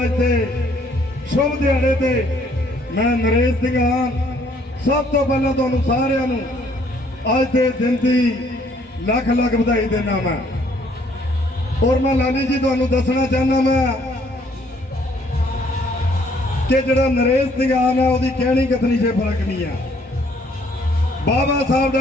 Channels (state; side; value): normal; both; correlation 0.64